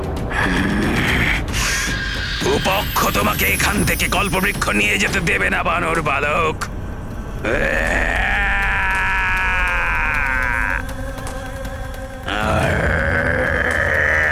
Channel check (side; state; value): both; identical; correlation 1.00